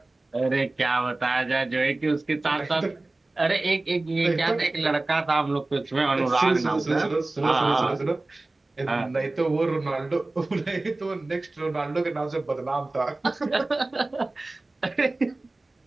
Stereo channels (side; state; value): left; quieter; 3.0 dB